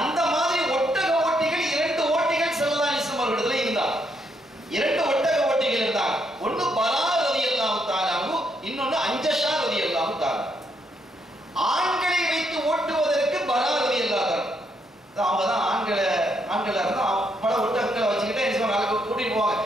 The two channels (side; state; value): both; normal; correlation 0.76